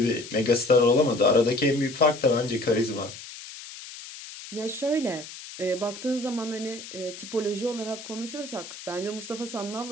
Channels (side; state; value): left; noise; hiss, 13 dB below the sound